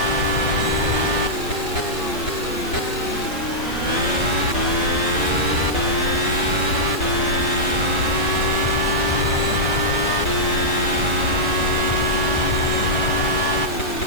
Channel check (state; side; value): noise; right; hiss, 17 dB below the sound